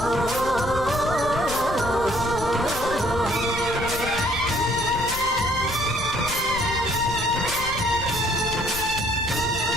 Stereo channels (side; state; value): left; noise; rumble, 9 dB below the sound